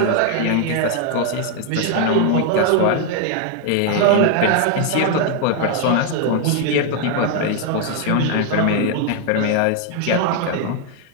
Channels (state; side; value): different; both; correlation 0.00